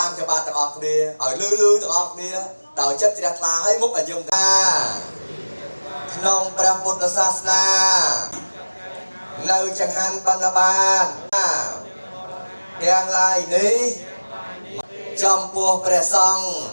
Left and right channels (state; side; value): inverted; both; correlation -1.00